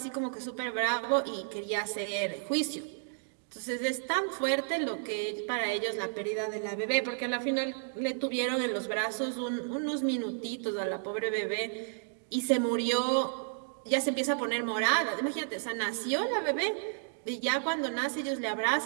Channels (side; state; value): left; silent; digital silence